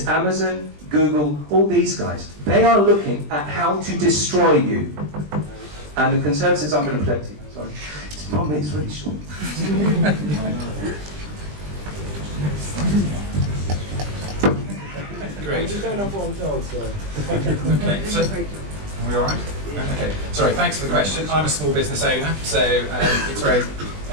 Amazon, Google, all these guys. They are looking at how to destroy you. And the Conservatives, I'm going to protect you. Sorry. It's 1 minute, it's really short. Great. I'm just going off what I'm told, so. Okay, so, are we all right? Okay, sorry, thanks for the question. I'm a small business owner, so it's very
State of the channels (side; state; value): left; late; 20 ms